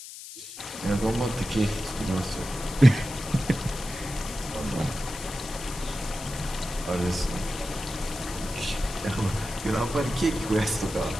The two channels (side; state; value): left; noise; hiss, 12 dB below the sound